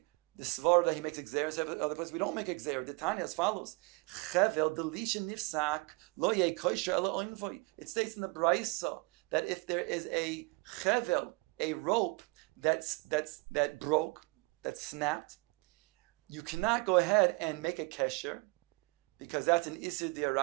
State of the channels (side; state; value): left; quieter; 28.7 dB